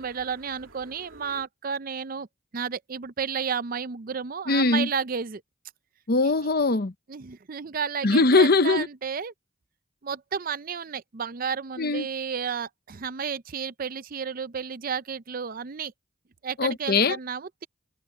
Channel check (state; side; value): normal; both; correlation 0.11